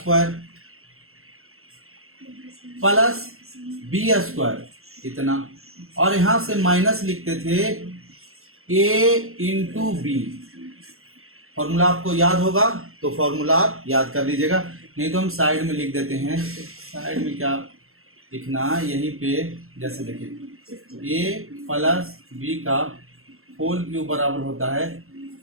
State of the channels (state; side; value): late; left; 0.62 ms